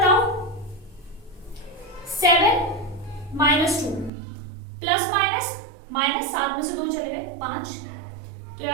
7 माइनस 2 प्लस माइनस माइनस 7 में से 2 चले गए 5, तो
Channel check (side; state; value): left; drops out; at 4.1 s